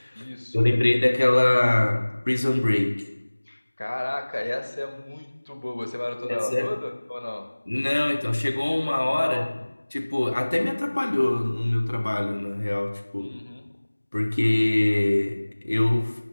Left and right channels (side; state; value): both; inverted; correlation -1.00